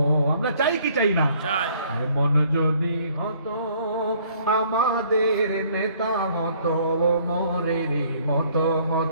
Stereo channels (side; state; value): both; inverted; correlation -0.61